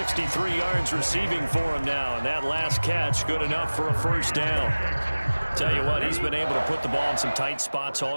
yards receiving for him now, and that last catch good enough for a first down. Tell you what, he's been able to put the ball in some tight spots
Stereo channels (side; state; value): both; inverted; correlation -1.00